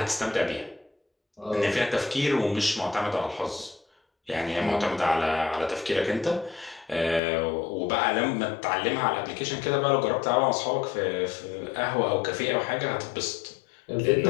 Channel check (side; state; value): right; drops out; at 7.2 s